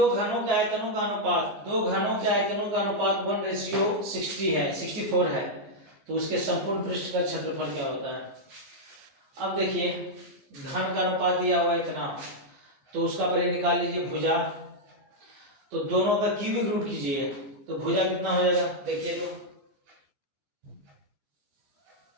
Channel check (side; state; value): left; late; 14 ms